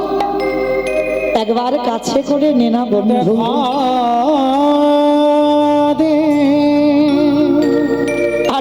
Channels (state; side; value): identical; both; correlation 1.00